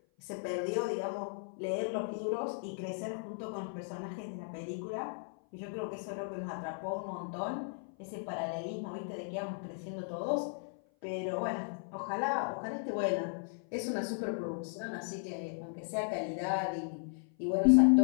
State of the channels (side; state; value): right; silent; 54 dB below the other